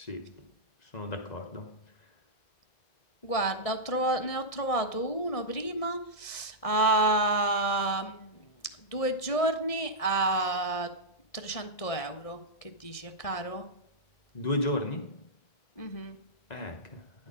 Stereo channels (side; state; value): right; late; 1.7 ms